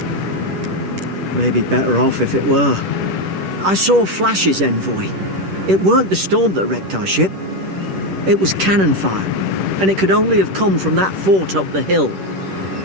maybe better off if it were. I saw Flash's envoy. It weren't the storm that wrecked our ship. It was cannon fire, and it could only have come from that fort up the hill.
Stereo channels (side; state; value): left; late; 10 ms